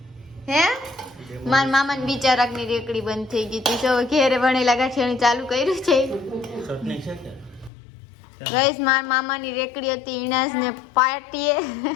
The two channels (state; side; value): drops out; right; at 7.7 s